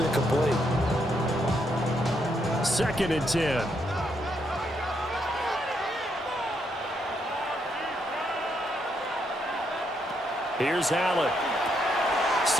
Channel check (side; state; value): both; normal; correlation 0.77